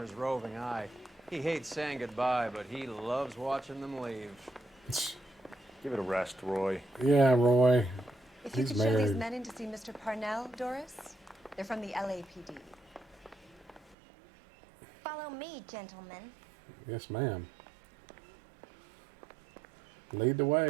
roving eye. He hates saying goodbye, but he loves watching them leave. Give it a rest, Roy. Yeah, Roy. If you could show these men in to see Mr. Parnell, Doris. They're from the LAPD. Follow me, gentlemen. Yes, ma'am. Lead the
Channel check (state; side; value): drops out; left; at 14.0 s